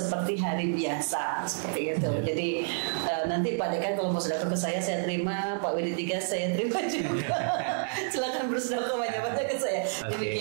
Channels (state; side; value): silent; left; 58 dB below the other